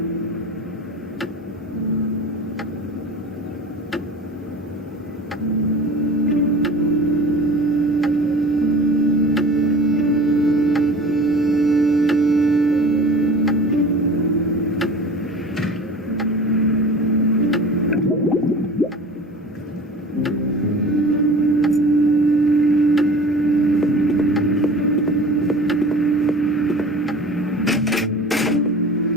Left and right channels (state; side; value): normal; both; correlation 0.39